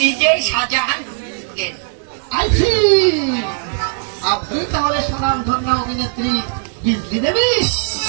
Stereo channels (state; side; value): silent; left; 63 dB below the other